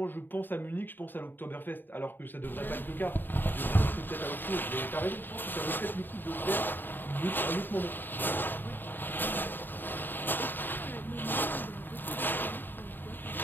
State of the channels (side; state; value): right; late; 0.093 ms